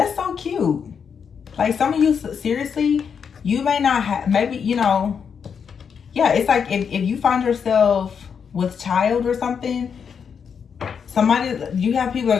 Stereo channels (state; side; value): quieter; right; 6.8 dB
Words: so cute. Like, some of you, seriously, you may not have, maybe, you know, yeah, it's like if you find yourself with child or something, you have people that